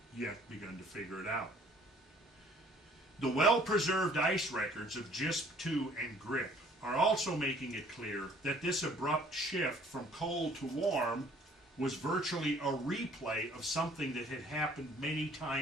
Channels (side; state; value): both; normal; correlation 0.57